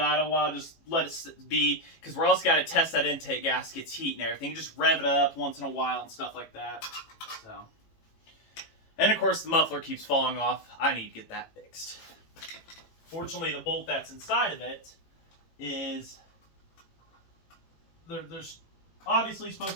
a while, just let it be, because we're also got to test that intake gasket's heat and everything. You just rev it up once in a while and stuff like that. So, and of course the muffler keeps falling off. I need to get that fixed. Fortunately, the bolt that's inside of it is, there's obviously supposed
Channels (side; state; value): right; late; 18 ms